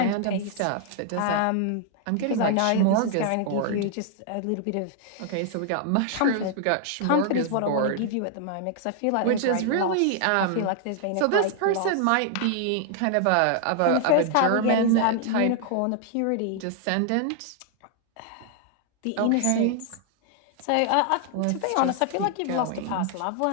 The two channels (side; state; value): both; different; correlation 0.00